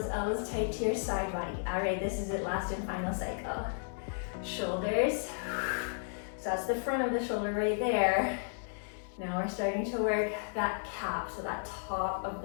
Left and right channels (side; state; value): right; silent; digital silence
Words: elbows tight to your side body. All right, this is it, last and final cycle. Shoulders. So that's the front of the shoulder right there. Now we're starting to work that cap, so that top of